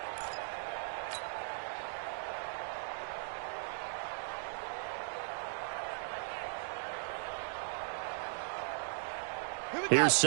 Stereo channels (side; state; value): left; silent; digital silence